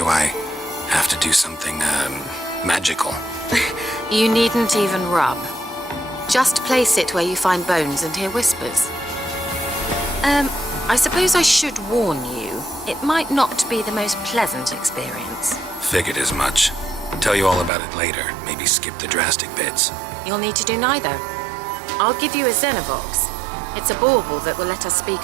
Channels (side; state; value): left; drops out; at 17.7 s